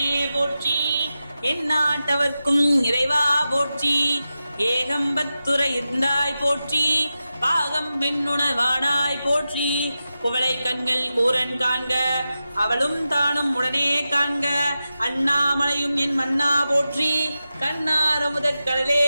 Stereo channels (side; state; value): both; inverted; correlation -0.92